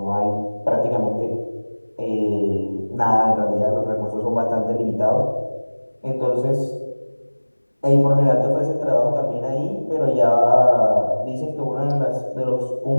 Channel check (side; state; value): both; inverted; correlation -1.00